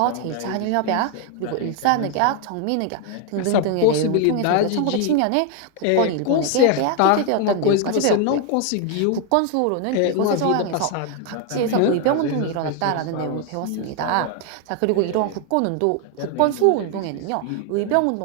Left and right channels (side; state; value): both; different; correlation 0.00